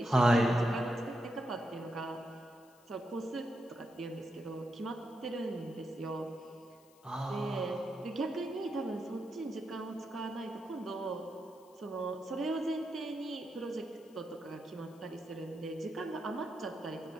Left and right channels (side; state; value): left; noise; hiss, 28 dB below the sound